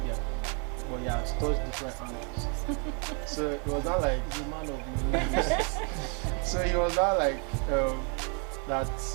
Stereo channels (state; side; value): quieter; left; 37.0 dB